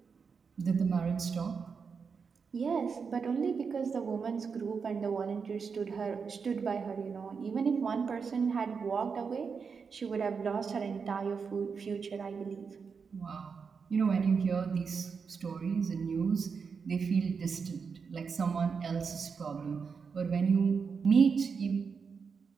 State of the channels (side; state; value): left; quieter; 5.6 dB